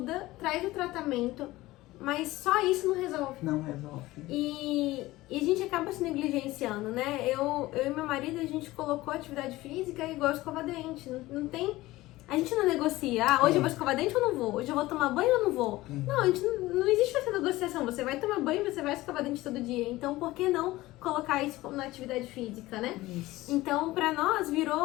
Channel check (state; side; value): quieter; right; 18.1 dB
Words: traz o tratamento, mas só isso não resolve. Não resolve. E a gente acaba se negligenciando, né? Eu e meu marido, a gente colocou atividade física igual escova dente. Não tem... A gente não negocia, hoje eu vou escovar dente ou não vou? Hoje eu vou tomar banho ou não vou? Não, a gente não existe essa negociação. Você vai tomar banho, você vai escovar dente todo dia. Então, por que não colocar isso na atividade física, né? Isso. Então, pra nós,